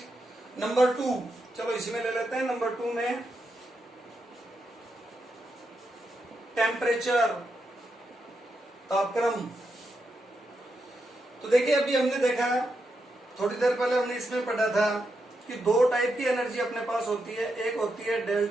Number 2, चलो इसी में ले लेते हैं। नंबर 2 में टेम्परेचर, तापक्रम। तो देखिए, अभी हमने देखा, थोड़ी देर पहले हमने इसमें पढ़ा था कि 2 टाइप की एनर्जी अपने पास होती है। एक होती है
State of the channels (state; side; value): normal; both; correlation 0.84